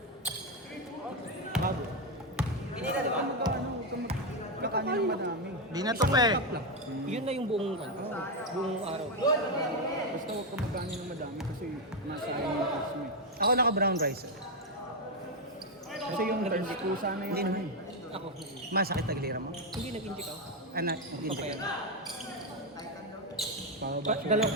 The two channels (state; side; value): normal; both; correlation 0.06